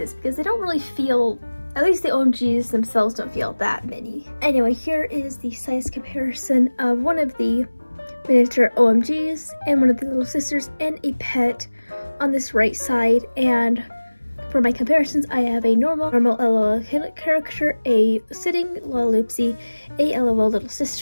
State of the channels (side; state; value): both; inverted; correlation -1.00